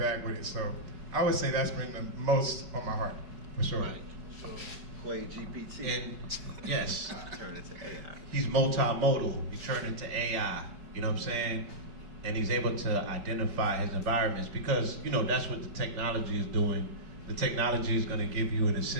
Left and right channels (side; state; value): left; late; 5.2 ms